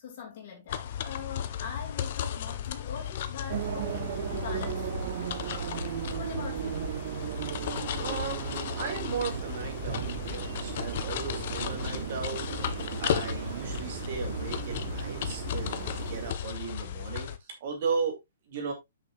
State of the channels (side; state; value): both; inverted; correlation -0.48